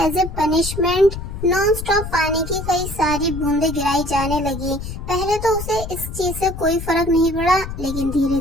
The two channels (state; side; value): noise; left; rumble, 8 dB below the sound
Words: a punishment non stop पानी की कई सारी बूंदें गिराई जाने लगी। पहले तो उसे इस चीज से कोई फर्क नहीं पड़ा, लेकिन धीरे